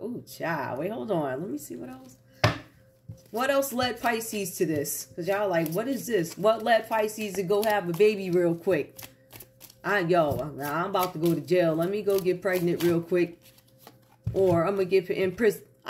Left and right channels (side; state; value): both; identical; correlation 1.00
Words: child. Wait, hold on. Let me see what else. What else led Pisces to this? Because y'all like, what is this? What led Pisces to go have a baby real quick? I'm about to go to jail. Let me go get pregnant real quick. Or I'm going to get in prison.